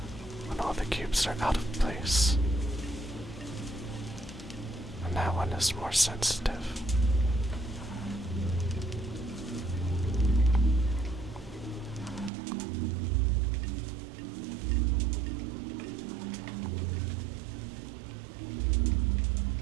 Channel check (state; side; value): drops out; left; at 12.3 s